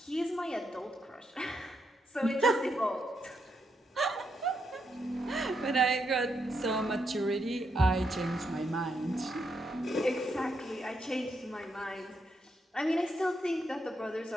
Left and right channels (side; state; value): both; normal; correlation 0.80